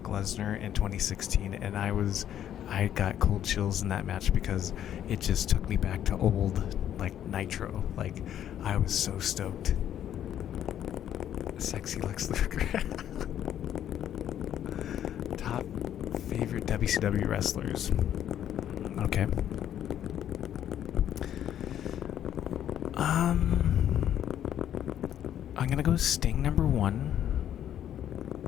Lesnar in 2016, and I got cold chills in that match because it just took me back to old, like, Nitro. Like, I was so stoked. Sexy Lex Luger. Top favorite WCW wrestlers. Okay. I'm gonna go Sting number 1.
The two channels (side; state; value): right; quieter; 10.6 dB